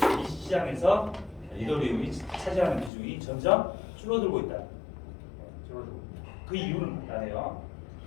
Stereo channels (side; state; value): right; drops out; at 2.9 s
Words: 이 시장에서 이더리움이 차지하는 비중이 점점 줄어들고 있다. 그 이유는 간단해요.